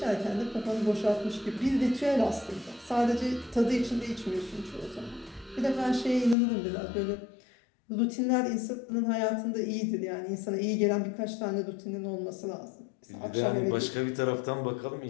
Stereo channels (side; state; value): right; drops out; at 6.4 s